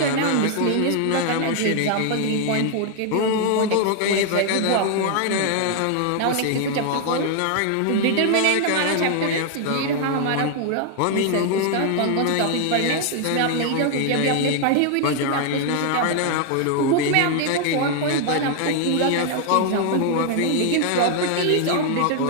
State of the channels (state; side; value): different; both; correlation 0.00